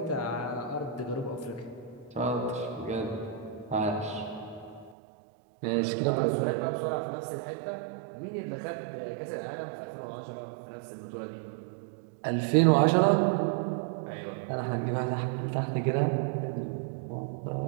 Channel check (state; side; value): drops out; left; at 5.0 s